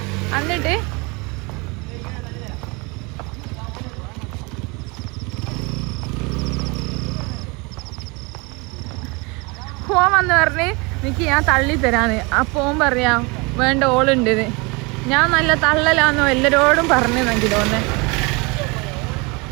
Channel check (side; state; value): left; quieter; 27.9 dB